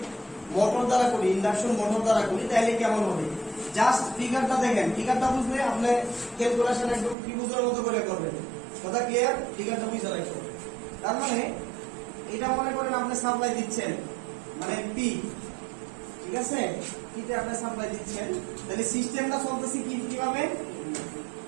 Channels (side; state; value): left; drops out; at 7.2 s